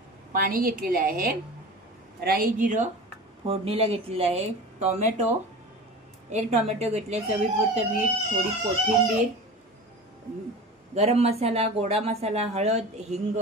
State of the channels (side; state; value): both; normal; correlation 0.34